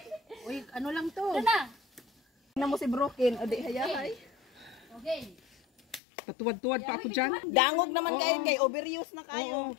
Uy, ano lang to? Na. Tingnan mo si Broken. O di hayahay. Okay. Patuwad-tuwad pa ako dyan. Dangog naman kayo kay overuse na kayo. Oo.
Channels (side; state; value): right; drops out; at 6.0 s